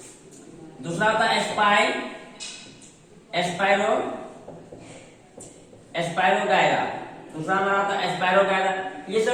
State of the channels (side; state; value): both; identical; correlation 1.00